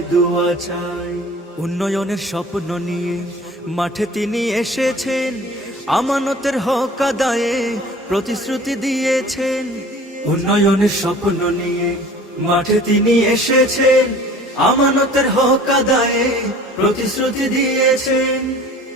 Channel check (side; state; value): both; normal; correlation 0.46